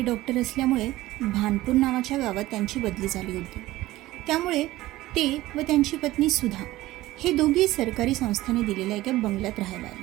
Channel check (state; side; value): quieter; left; 17.1 dB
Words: डॉक्टर असल्यामुळे भानपूर नावाच्या गावात त्यांची बदली झाली होती. त्यामुळे ते व त्यांची पत्नी सुधा हे दोघे सरकारी संस्थेने दिलेल्या एका बंगल्यात राहायला